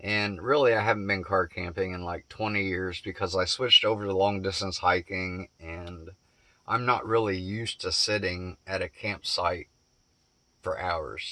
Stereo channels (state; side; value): identical; both; correlation 1.00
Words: really, I haven't been car camping in like 20 years because I switched over to long distance hiking, and I'm not really used to sitting at a campsite for hours.